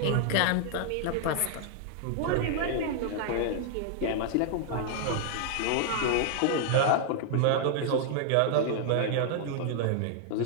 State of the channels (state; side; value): different; both; correlation -0.01